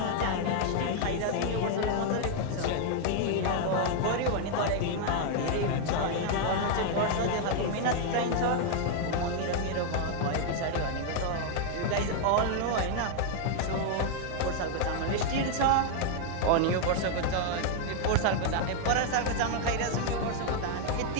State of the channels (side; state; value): both; different; correlation 0.00